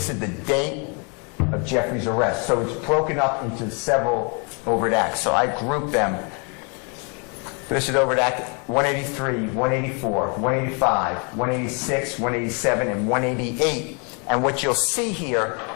is the date of Jeffrey's arrest. So it's broken up into several Overt Acts. So I grouped them. This is Overt Act 183, 184, 185, 186, 187, and 188. And what you'll see here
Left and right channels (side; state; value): right; quieter; 35.4 dB